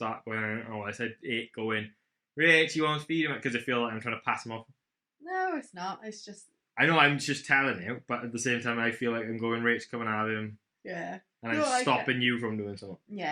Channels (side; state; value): both; identical; correlation 1.00